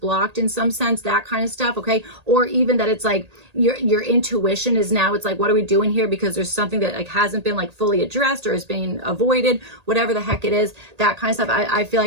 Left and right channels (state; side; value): late; left; 1.8 ms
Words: in some sense, that kind of stuff, okay? Or even that it's like your intuition is now, it's like, what are we doing here? Because there's something that like hasn't been like fully addressed or is being avoided, whatever the heck it is, that kind of stuff. I feel